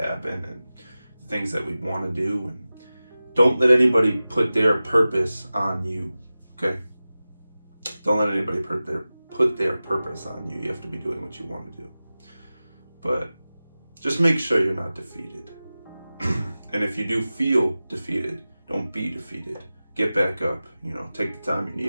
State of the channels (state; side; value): inverted; both; correlation -0.96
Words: and things that we want to do. And don't let anybody put their purpose on you, okay? Don't let anybody put their purpose on you. You have to be doing what you want to do. But just make sure you're not defeated. And if you do feel defeated, don't be defeated. Get back up. Take the time you